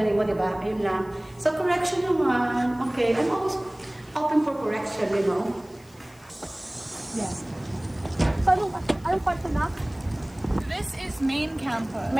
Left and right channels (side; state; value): left; noise; hiss, 28 dB below the sound